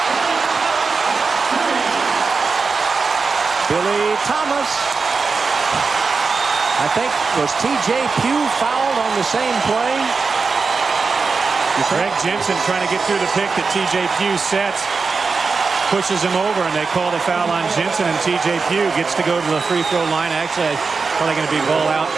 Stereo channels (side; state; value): left; quieter; 4.7 dB